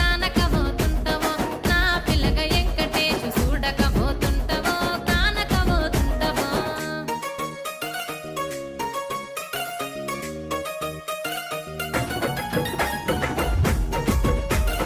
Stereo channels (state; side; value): identical; both; correlation 1.00